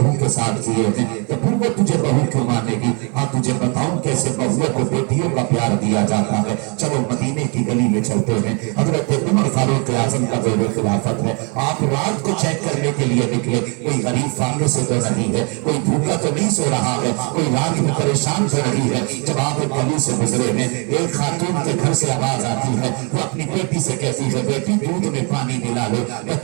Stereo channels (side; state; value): left; quieter; 34.4 dB